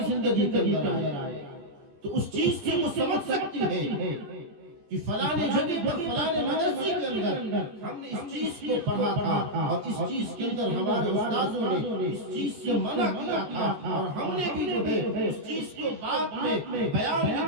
زندگی کے اندر آئے تو اس چیز سے وہ سمجھ سکتی ہے کہ فلانے جگہ پر فلانے مدرسے کے اندر ہم نے اس چیز کو پڑھا تھا اور اس چیز کے اندر ہمارے استاذوں نے اس چیز سے منع کیا تھا، اور ہم نے بھی جو ہے اس چیز کو بعد میں بیان کے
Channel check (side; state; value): left; late; 15 ms